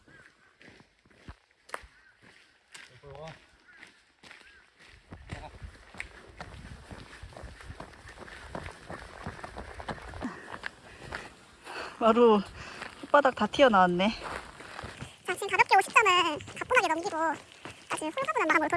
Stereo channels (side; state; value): both; identical; correlation 1.00